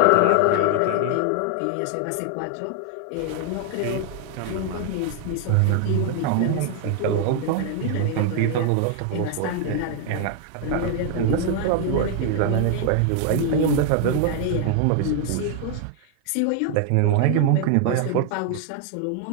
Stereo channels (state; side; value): different; both; correlation 0.00